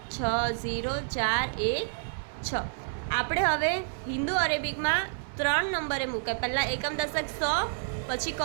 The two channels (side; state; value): left; silent; 58 dB below the other